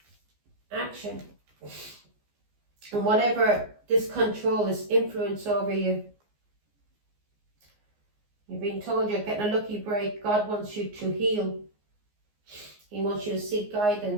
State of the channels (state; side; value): late; left; 14 ms